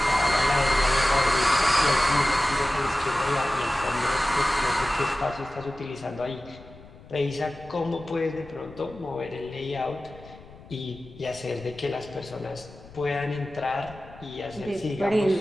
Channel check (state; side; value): noise; left; rumble, 20 dB below the sound